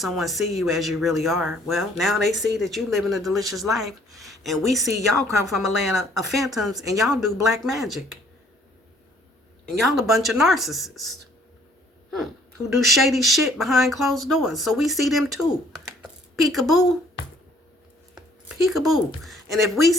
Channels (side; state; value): both; normal; correlation 0.60